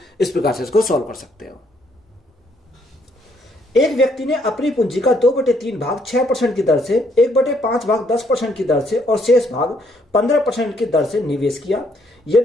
इस प्रकार से इसको सॉल्व कर सकते हो। एक व्यक्ति ने अपनी पूंजी का 2/3 भाग 6% की दर से, 1/5 भाग 10% की दर से और शेष भाग 15% की दर से निवेश किया।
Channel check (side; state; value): both; normal; correlation 0.69